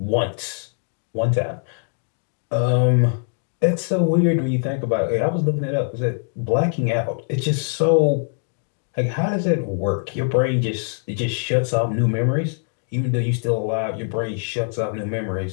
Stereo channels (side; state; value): right; silent; digital silence